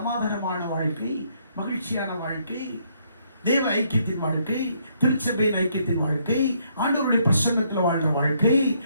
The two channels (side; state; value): both; inverted; correlation -0.70